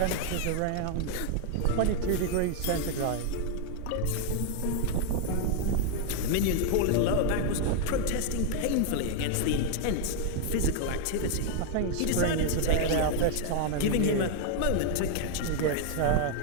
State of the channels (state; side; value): different; both; correlation 0.01